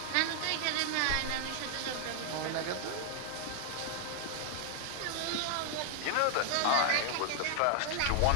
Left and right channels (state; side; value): different; both; correlation 0.00